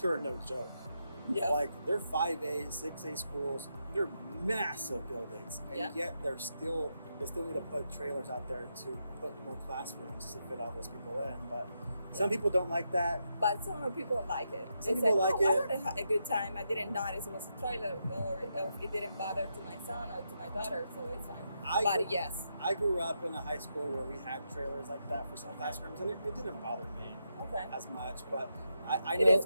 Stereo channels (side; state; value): both; inverted; correlation -0.84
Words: here are no joke. Yeah. Like they're 5A, 6A schools. They're massive buildings, and yet they still need to put trailers out there to put more classrooms to fit all those people in. But some people don't like that. But some people like it. Some people like it. I had a good time. I didn't notice it was a trailer, or it didn't bother to my son or to my daughter, so it's fine. Yes. I grew up in a high school where we had trailers like that for some classrooms, and it didn't bother me as much. But I know it is